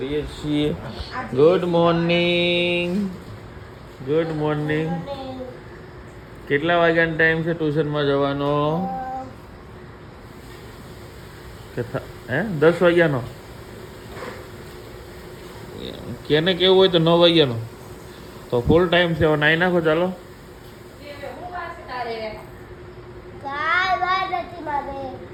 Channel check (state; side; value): identical; both; correlation 1.00